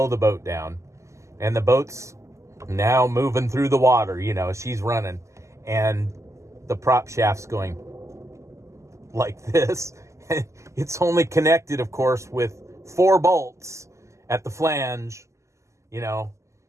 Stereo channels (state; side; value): late; left; 0.14 ms